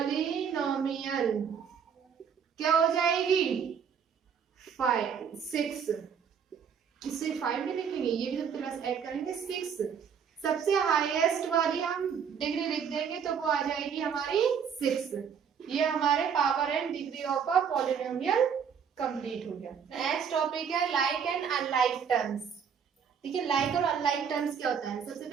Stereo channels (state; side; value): quieter; left; 7.2 dB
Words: क्या हो जाएगी? 6। इससे 5 भी लिखेंगे, ये भी प्लस ऐड करेंगे 6। सबसे हाईएस्ट वाली हम डिग्री लिख देंगे तो वो आ जाएगी हमारी 6। ये हमारे power and degree of a polynomial complete हो गया। नेक्स्ट टॉपिक है लाइक एंड अनलाइक टर्म्स। ठीक है, लाइक और अनलाइक टर्म्स क्या होता है? सबसे